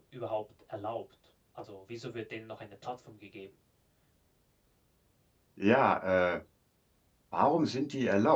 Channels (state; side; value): identical; both; correlation 1.00